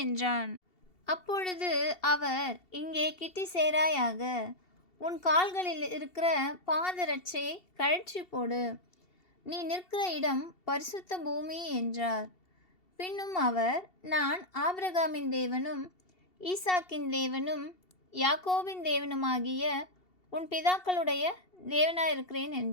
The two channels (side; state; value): right; late; 2.7 ms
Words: என்றான். அப்பொழுது அவர், இங்கே கிட்டி சேராயாக, உன் கால்களில் இருக்கிற பாதரட்சையை கழற்றி போடு, நீ நிற்கிற இடம் பரிசுத்த பூமி என்றார். பின்னும் அவர், நான் ஆபிரகாமின் தேவனும் ஈசாக்கின் தேவனும் யாக்கோபின் தேவனுமாகிய உன் பிதாக்களுடைய தேவனாயிருக்கிறேன்